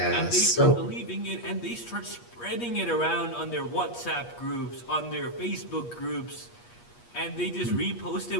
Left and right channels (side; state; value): right; late; 8.4 ms